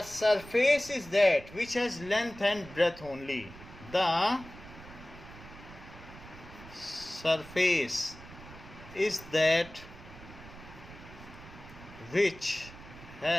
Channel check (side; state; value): right; noise; rumble, 17 dB below the sound